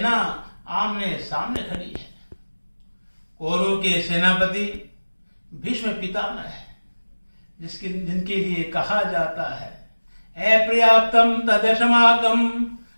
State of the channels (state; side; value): inverted; both; correlation -1.00